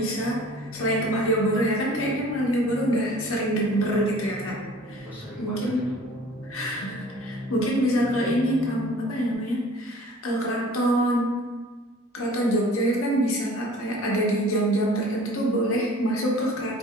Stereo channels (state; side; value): normal; both; correlation 0.47